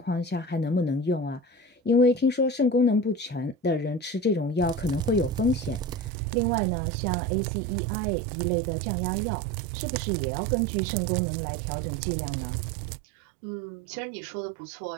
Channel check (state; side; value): drops out; left; at 6.1 s